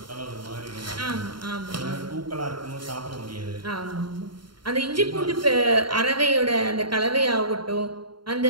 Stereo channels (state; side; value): late; left; 0.72 ms